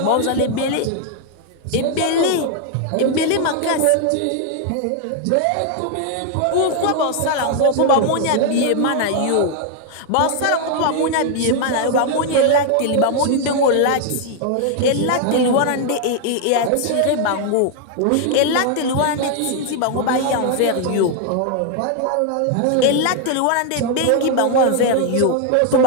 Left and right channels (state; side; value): different; both; correlation 0.00